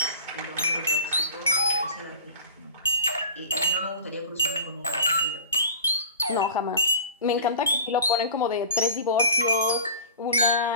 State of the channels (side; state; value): both; inverted; correlation -0.38